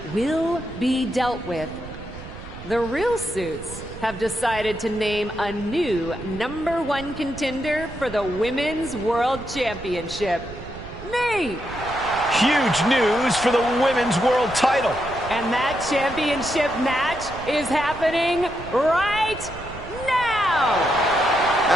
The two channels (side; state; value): right; noise; rumble, 13 dB below the sound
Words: will be dealt with, the Real Suits have decided to name a new #1 contender for the Women's World Championship. Me! Huge news for the Women's World title. And that championship match is happening right now!